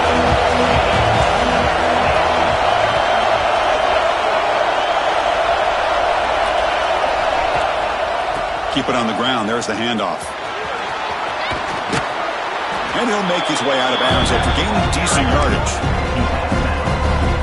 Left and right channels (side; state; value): both; identical; correlation 1.00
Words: Keep it on the ground. There's the handoff. And he'll make his way out of bounds after gaining decent yardage.